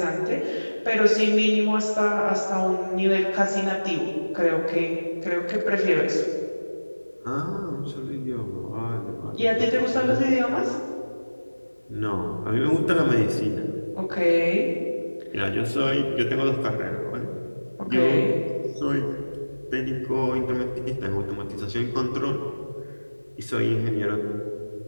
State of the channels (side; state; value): both; inverted; correlation -1.00